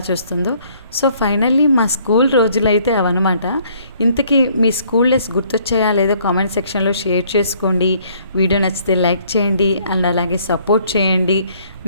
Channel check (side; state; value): both; inverted; correlation -0.62